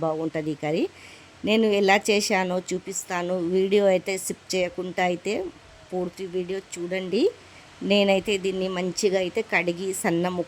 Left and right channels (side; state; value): both; identical; correlation 1.00